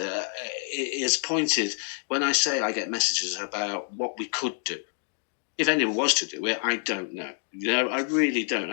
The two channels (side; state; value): right; silent; 60 dB below the other